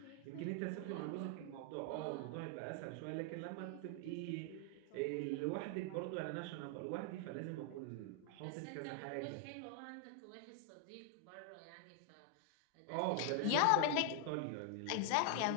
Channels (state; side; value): different; both; correlation 0.00